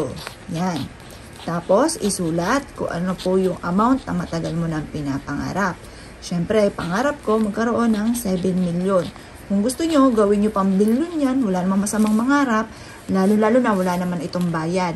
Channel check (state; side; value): identical; both; correlation 1.00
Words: Yan. Tapos, isulat kung ano po yung amount na matagal mo nang pinapangarap. Siyempre, pangarap ko magkaroon ng 7 million. Kung gusto nyo, gawin nyo pang billion yan. Wala namang masamang mangarap. Lalo-lalo na wala naman itong bayad.